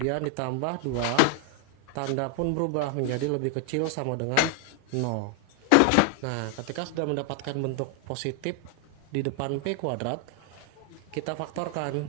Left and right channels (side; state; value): both; different; correlation 0.00